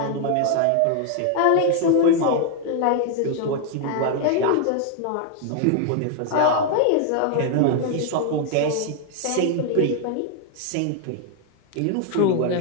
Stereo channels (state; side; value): different; both; correlation 0.00